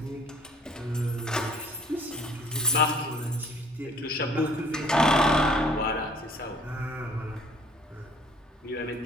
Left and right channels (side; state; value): both; normal; correlation 0.56